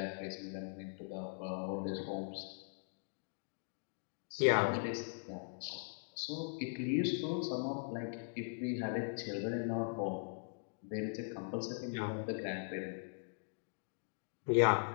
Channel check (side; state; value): right; silent; digital silence